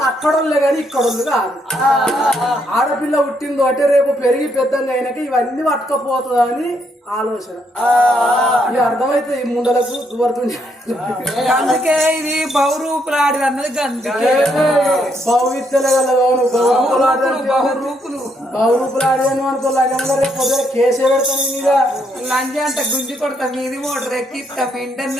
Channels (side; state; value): both; normal; correlation 0.74